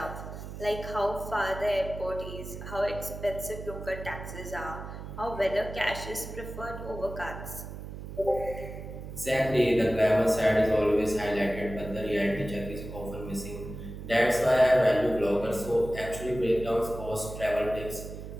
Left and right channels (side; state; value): right; noise; hum, 10 dB below the sound